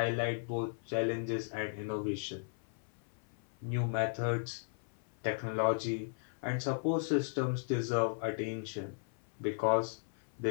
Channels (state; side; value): silent; right; 54 dB below the other